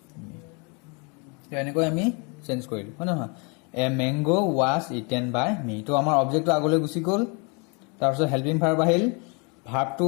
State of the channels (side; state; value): right; quieter; 33.1 dB